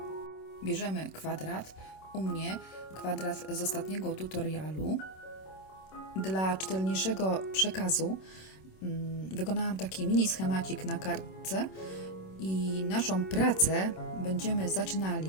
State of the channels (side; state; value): right; late; 26 ms